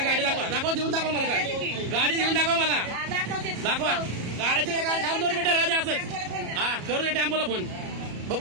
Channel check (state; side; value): late; left; 34 ms